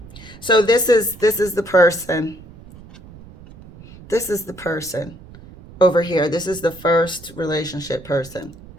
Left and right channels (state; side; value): noise; right; rumble, 19 dB below the sound